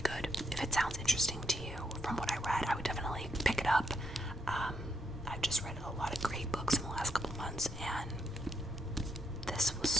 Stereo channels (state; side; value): normal; both; correlation 0.79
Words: If it sounds interesting to you from what I read, I would definitely pick it up. I've just read a lot of great books in the last couple months, and this